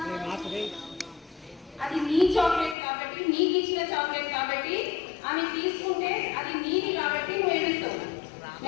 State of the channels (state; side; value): drops out; right; at 2.8 s